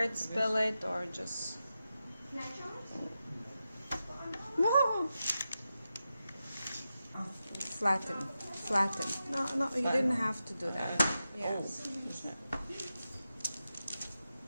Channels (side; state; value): both; inverted; correlation -0.91